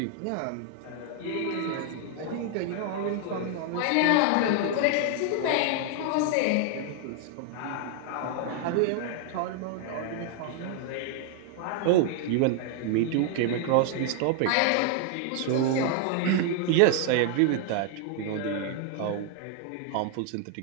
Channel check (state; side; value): different; both; correlation 0.00